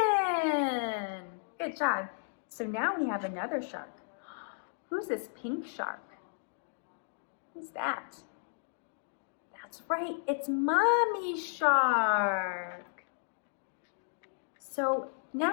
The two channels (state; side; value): silent; right; digital silence